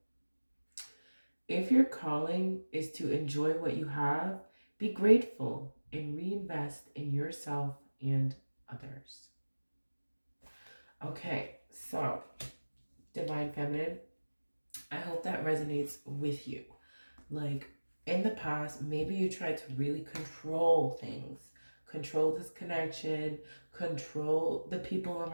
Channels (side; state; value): both; inverted; correlation -1.00